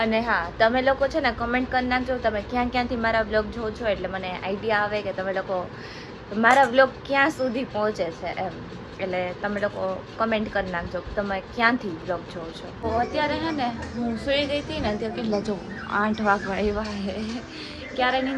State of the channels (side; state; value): both; identical; correlation 1.00